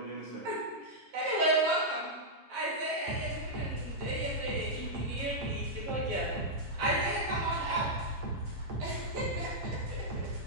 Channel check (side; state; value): left; late; 7.3 ms